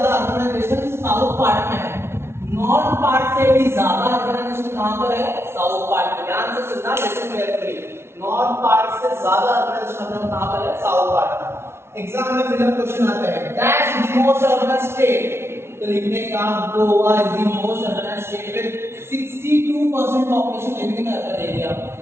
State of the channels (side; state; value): left; late; 0.12 ms